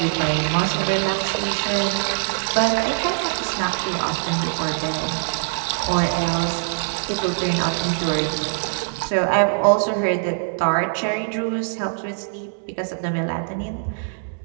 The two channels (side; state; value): left; silent; digital silence